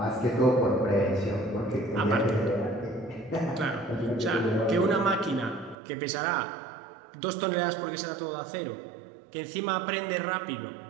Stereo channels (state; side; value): drops out; left; at 5.8 s